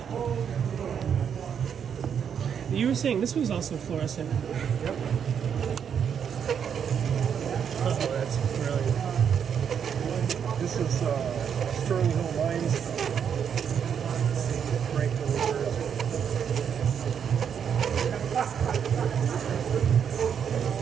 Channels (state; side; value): quieter; left; 7.8 dB